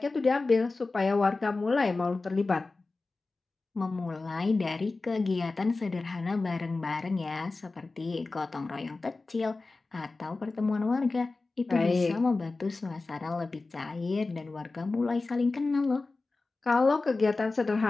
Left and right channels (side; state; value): right; quieter; 3.6 dB